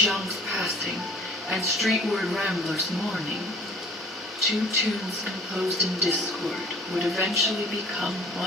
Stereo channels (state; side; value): normal; both; correlation 0.50